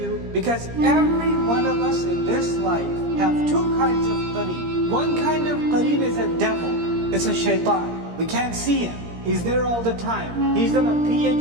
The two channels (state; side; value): late; left; 17 ms